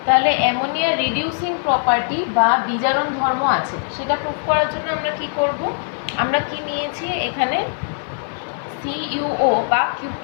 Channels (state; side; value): silent; right; digital silence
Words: তাহলে অ্যামোনিয়া রিডিউসিং প্রপার্টি বা বিজারণ ধর্ম আছে, সেটা প্রুফ করার জন্য আমরা কি করব, আমরা কি নিয়েছি এখানে CuO বা